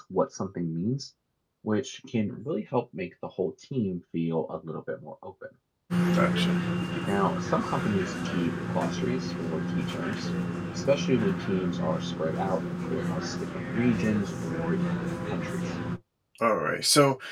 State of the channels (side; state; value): both; identical; correlation 1.00